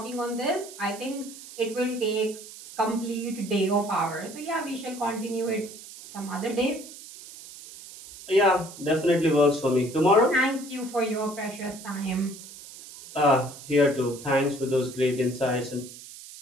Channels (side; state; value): right; noise; hiss, 15 dB below the sound